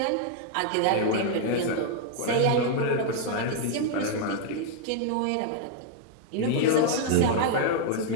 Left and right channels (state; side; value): different; both; correlation 0.00